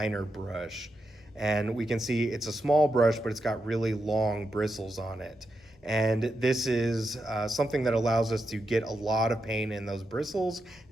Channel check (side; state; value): both; normal; correlation 0.86